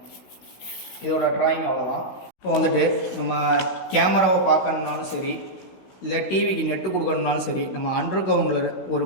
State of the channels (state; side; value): late; right; 16 ms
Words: இதோட ட்ராயிங் அவ்வளோதான். இப்போ வந்துட்டு நம்ம கேமராவை பார்க்கணுன்னாலும் சரி, இல்லை டிவிக்கு நெட்டு கொடுக்கணுன்னாலும் சரி, நம்ம அண்டர் கிரவுண்டில் ஒரு